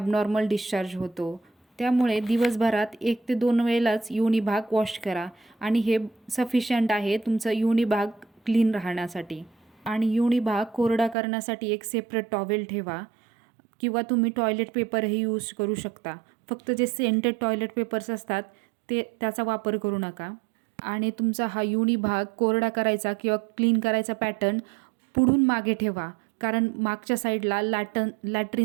डिस्चार्ज होतो. त्यामुळे दिवसभरात 1 ते 2 वेळेलाच योनी भाग वॉश करा आणि हे सफिशियंट आहे तुमचा योनी भाग क्लीन राहण्यासाठी. आणि योनी भाग कोरडा करण्यासाठी एक सेपरेट टॉवेल ठेवा किंवा तुम्ही टॉयलेट पेपरही यूज करू शकता. फक्त जे सेंटेड टॉयलेट पेपर्स असतात त्याचा वापर करू नका. आणि तुमचा हा योनी भाग कोरडा करायचा किंवा क्लीन करायचा पॅटर्न पुढून मागे ठेवा. कारण मागच्या साईडला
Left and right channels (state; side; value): drops out; left; at 11.2 s